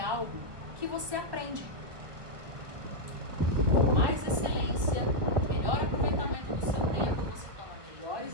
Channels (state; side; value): late; left; 1.3 ms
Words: que você aprende. Com mais excelência, melhor aproveitamento do seu tempo, você toma melhores